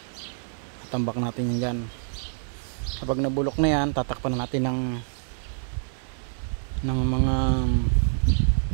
Tambak natin yung gan. Kapag nabulok na yan, tatakpan na natin ng mga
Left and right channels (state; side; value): silent; left; digital silence